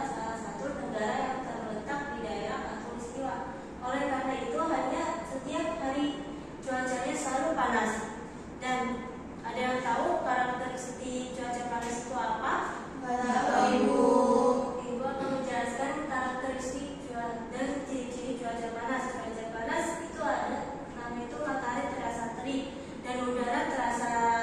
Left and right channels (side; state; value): both; identical; correlation 1.00